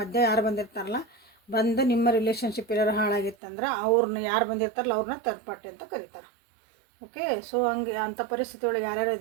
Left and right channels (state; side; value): drops out; left; at 3.4 s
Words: ಯಾರು ಬಂದಿರ್ತಾರಲ್ಲ, ಬಂದು ನಿಮ್ಮ ರಿಲೇಷನ್ಶಿಪ್ ಎಲ್ಲರೂ ಹಾಳಾಗಿತ್ತಂದ್ರೆ ಅವ್ರನ್ನ ಯಾರು ಬಂದಿರ್ತಾರಲ್ಲ ಅವ್ರನ್ನ ಥರ್ಡ್ ಪಾರ್ಟಿ ಅಂತ ಕರೀತಾರೆ. ಓಕೆ, ಸೊ ಹಂಗೆ ಅಂಥ ಪರಿಸ್ಥಿತಿ ಒಳಗೆ ಯಾರ್ಯಾರು